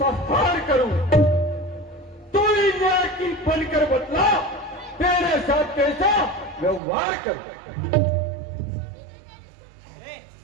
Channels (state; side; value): drops out; left; at 6.8 s